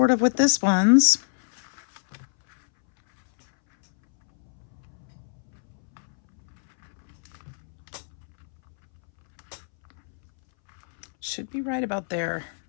of with this one's. Should be right about there.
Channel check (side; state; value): right; silent; 62 dB below the other